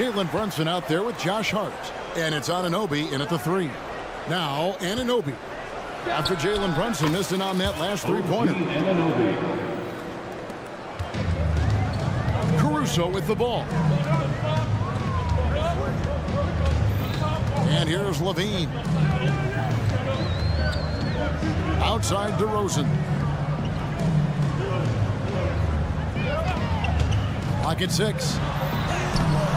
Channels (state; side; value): identical; both; correlation 1.00